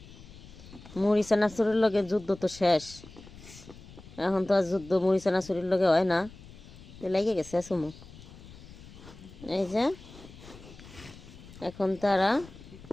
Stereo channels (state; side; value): noise; left; rumble, 18 dB below the sound